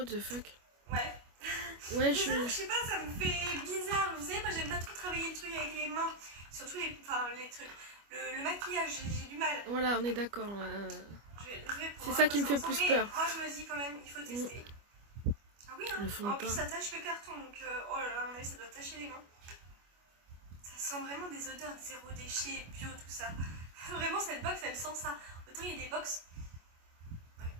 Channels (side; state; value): left; late; 25 ms